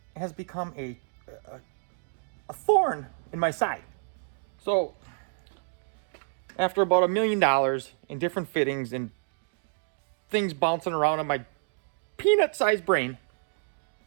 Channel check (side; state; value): left; silent; digital silence